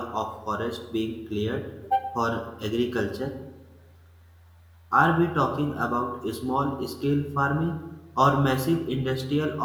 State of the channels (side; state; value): both; identical; correlation 1.00